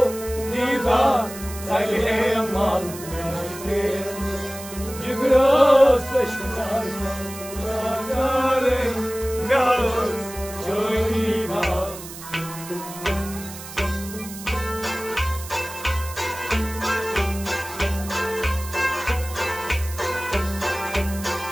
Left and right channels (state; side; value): noise; right; hiss, 13 dB below the sound